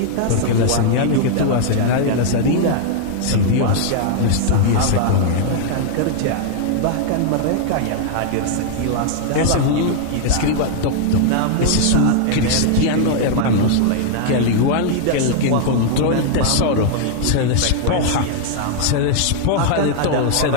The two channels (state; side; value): different; both; correlation -0.01